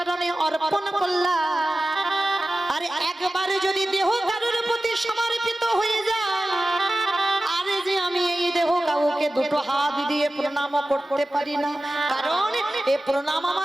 অর্পণ করলাম, আর একবারে যদি দেহ কারোর প্রতি সমর্পিত হয়ে যায়, আরে যে আমি এই দেহ কাউকে দুটো হাত দিয়ে প্রণাম করতে পারি না, কারণ এ প্রণাম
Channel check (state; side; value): normal; both; correlation 0.95